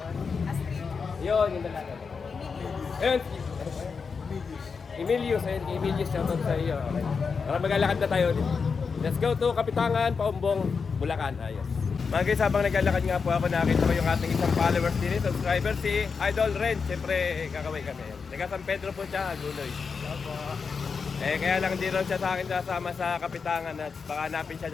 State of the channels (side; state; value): right; quieter; 5.4 dB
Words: ano. Ayun, yung dalaga. Ayun, Emilius. Ayun, Emilius, shoutout sa iyo. Okay. Para maglalakad na tayo ulit. Let's go to Kapitangan, Paumbong, Bulacan. Ayos. Mga guys, habang naglalakad nga po ako, nakita ko yung ating isang followers din, subscriber, si Idol Ren. Siyempre, kakaway kami. Taga San Pedro po siya, Agunoy. Kaya lang hindi rin siya sa akin sasama sa Kapitangan at baka hanapin siya